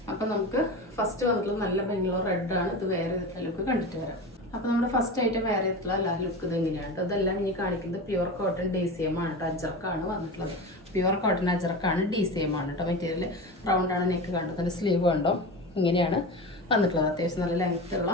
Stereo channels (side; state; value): both; normal; correlation 0.27